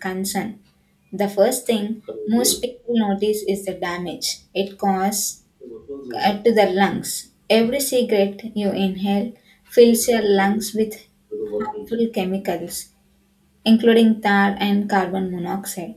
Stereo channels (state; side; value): identical; both; correlation 1.00